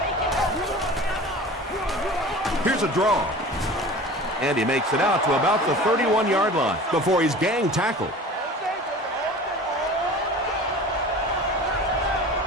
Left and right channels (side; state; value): both; normal; correlation 0.39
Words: Here's a draw. And he makes it out to about the 31-yard line before he's gang tackled.